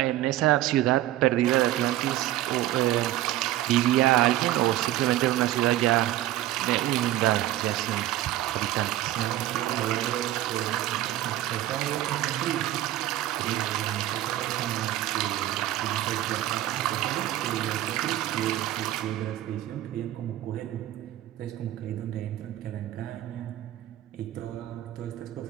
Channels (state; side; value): quieter; left; 14.2 dB